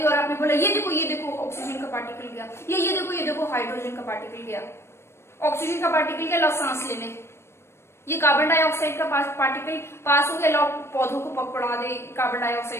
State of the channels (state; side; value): late; right; 0.12 ms